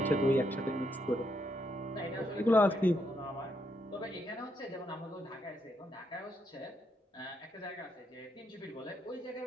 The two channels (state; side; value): normal; both; correlation 0.78